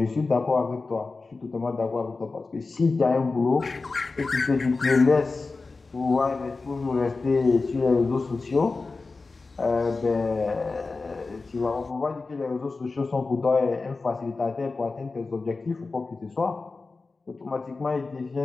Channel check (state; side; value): quieter; right; 3.9 dB